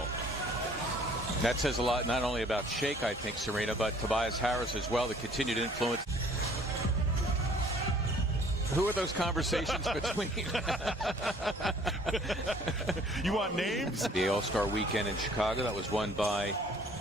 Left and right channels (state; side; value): normal; both; correlation 0.56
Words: That says a lot, not only about Shake, I think, Serena, but Tobias Harris as well, the continued influence. Who are those conversations between? You want names? The All-Star Weekend in Chicago, that was won by